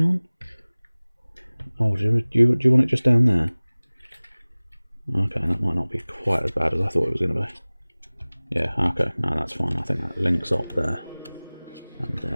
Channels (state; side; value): inverted; both; correlation -1.00